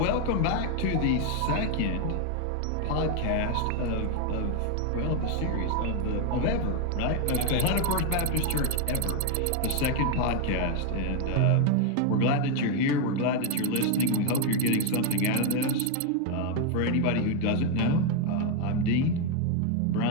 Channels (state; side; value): different; both; correlation 0.01